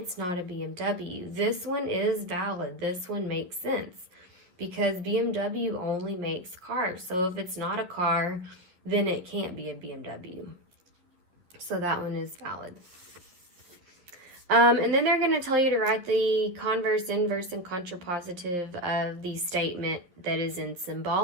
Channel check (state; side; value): late; left; 11 ms